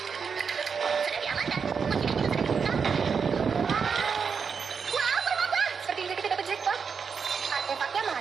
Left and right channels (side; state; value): left; quieter; 6.0 dB